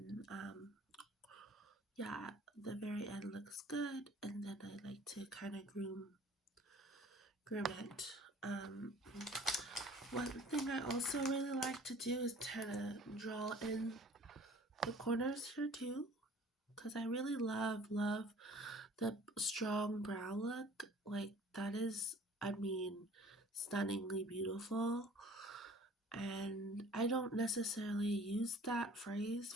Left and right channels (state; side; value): normal; both; correlation 0.50